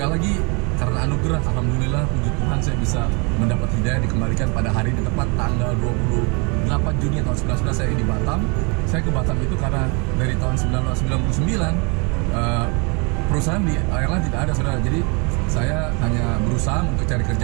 lagi karena anugerah, alhamdulillah, puji Tuhan saya bisa mendapat hidayah, dikembalikan pada hari ini tepat tanggal 28 Juni tahun 1999 saya di Batam. Saya ke Batam itu karena dari tahun 1999 perusahaan di airline tidak ada saudara. Jadi saya hanya berusaha untuk cari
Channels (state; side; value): quieter; left; 32.1 dB